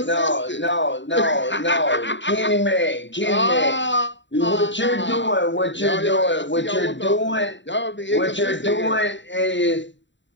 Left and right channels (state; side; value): late; right; 0.53 ms